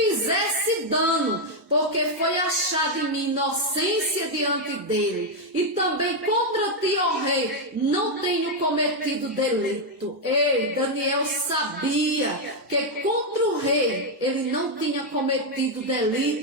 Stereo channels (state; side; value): normal; both; correlation 0.02